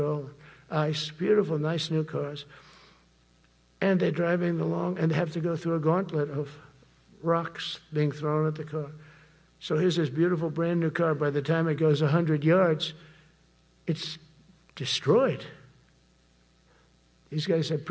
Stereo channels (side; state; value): both; identical; correlation 1.00